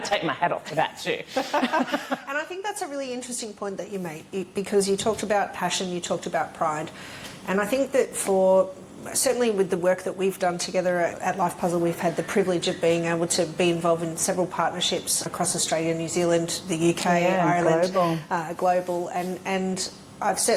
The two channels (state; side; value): identical; both; correlation 1.00